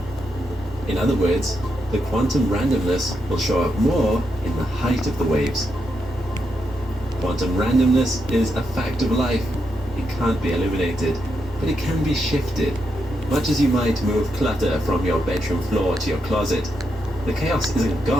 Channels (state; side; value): noise; right; hum, 23 dB below the sound